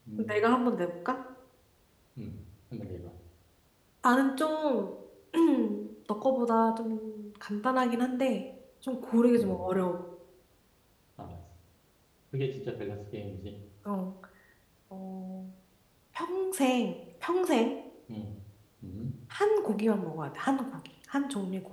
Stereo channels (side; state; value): both; identical; correlation 1.00